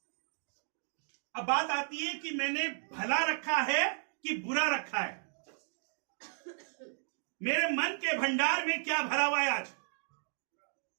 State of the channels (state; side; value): silent; left; digital silence